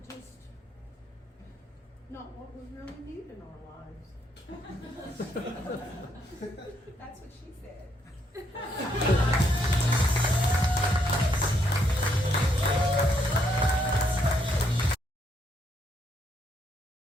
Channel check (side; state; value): both; normal; correlation 0.74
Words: just not what we really need in our lives. That's what she said.